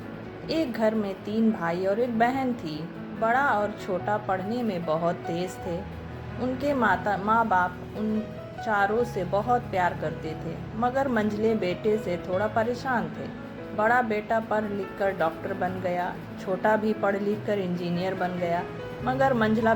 एक घर में 3 भाई और एक बहन थी। बड़ा और छोटा पढ़ने में बहुत तेज थे। उनके माँ बाप उन चारों से बहुत प्यार करते थे, मगर मंझले बेटे से थोड़ा परेशान थे। बड़ा बेटा पढ़ लिख कर डॉक्टर बन गया, छोटा भी पढ़ लिख कर इंजीनियर बन गया, मगर मंझला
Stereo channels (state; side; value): identical; both; correlation 1.00